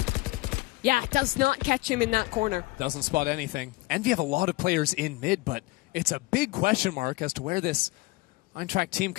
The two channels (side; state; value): right; quieter; 21.9 dB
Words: Yeah, it does not catch him in that corner. Doesn't spot anything. Envy have a lot of players in mid, but it's a big question mark as to where this Eintracht team